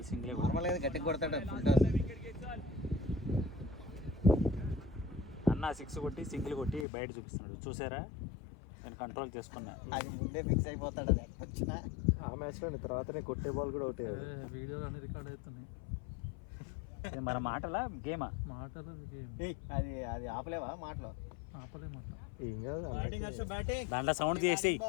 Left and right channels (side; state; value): right; drops out; at 6.9 s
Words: సింగిలే. నార్మల్గా గట్టిగా కొడతాడు ఫుల్ టాస్. అన్న 6 కొట్టి సింగిల్ కొట్టి బయట చూపిస్తున్నాడు. చూసారా, నేను కంట్రోల్ చేసుకున్నా. అది ముందే ఫిక్స్ అయిపోతాడు. అది వచ్చినా ఆ మ్యాచ్లో తర్వాతనే కొట్టే బాల్ కూడా ఒకటే. వీడియోలు అన్ని రికార్డ్ అవుతున్నాయి. మన మాటలా గేమా? మాటలు గేమ్. అది అది ఆపలేవా మాటలో? ఆపలేమాట. ఏం కాదు దాంట్లో సౌండ్ చేసేయి.